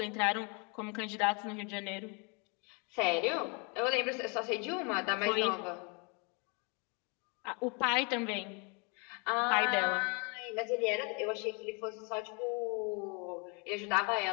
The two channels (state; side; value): quieter; right; 33.6 dB